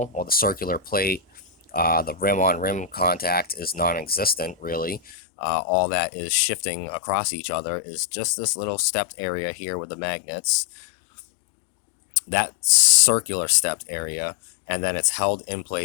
Well, the circular plate. The rim on rim contact is non-existent, really. All that is shifting across each other is just this little stepped area here with the magnets, that circular stepped area, and then it's held in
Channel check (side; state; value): right; drops out; at 5.0 s